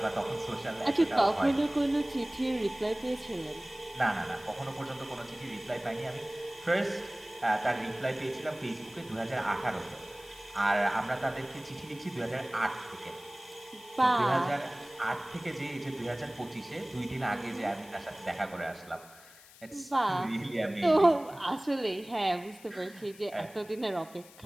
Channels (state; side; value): noise; left; hiss, 21 dB below the sound